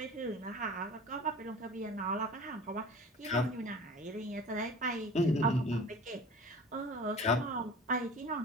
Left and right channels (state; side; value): normal; both; correlation 0.41